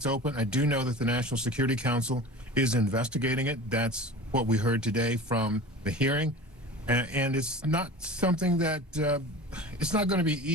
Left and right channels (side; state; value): both; normal; correlation 0.36